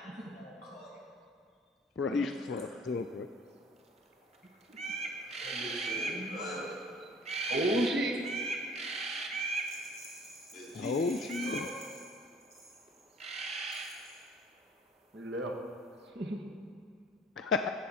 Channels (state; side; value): normal; both; correlation 0.51